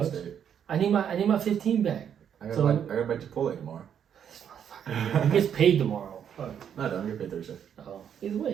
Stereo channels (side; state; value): left; quieter; 8.5 dB